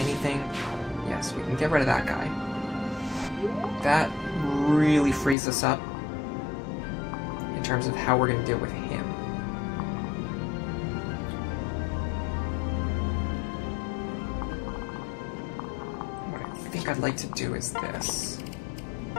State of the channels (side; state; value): right; drops out; at 5.4 s